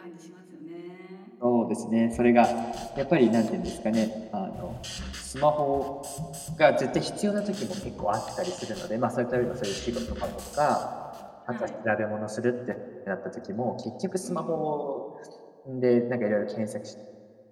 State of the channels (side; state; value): both; identical; correlation 1.00